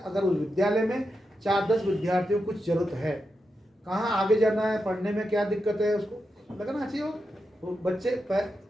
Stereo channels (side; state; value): both; normal; correlation 0.87